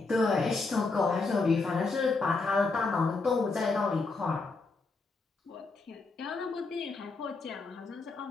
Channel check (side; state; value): right; quieter; 3.8 dB